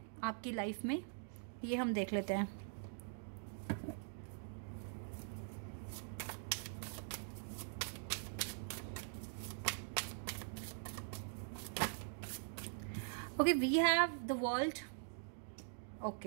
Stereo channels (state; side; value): silent; left; digital silence